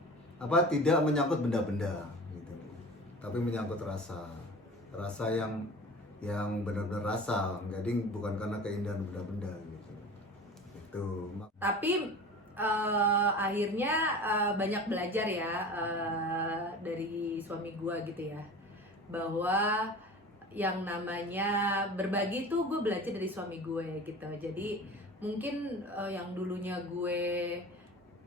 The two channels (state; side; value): normal; both; correlation 0.37